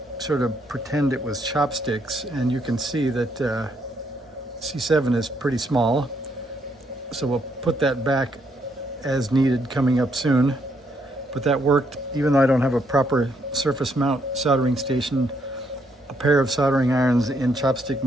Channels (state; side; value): normal; both; correlation 0.74